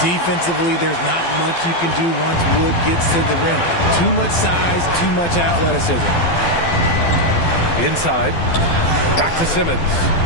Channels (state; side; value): late; right; 12 ms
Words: there's not much you can do once Wood gets to the rim. Too much size, too much athleticism. Inside. Back to Simmons.